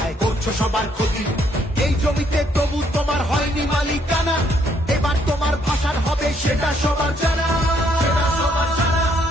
করছো সবার ক্ষতি। এই জমিতে তবু তোমার হয়নি মালিকানা, এবার তোমার ভাষার হবে সেটা সবার জানা।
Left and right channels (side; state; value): both; normal; correlation 0.69